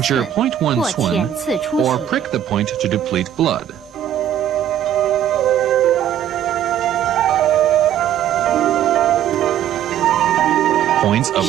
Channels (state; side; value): quieter; left; 10.7 dB